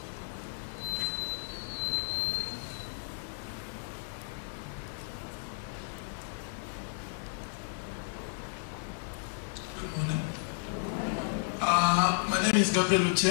name is Gabriel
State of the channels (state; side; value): silent; right; digital silence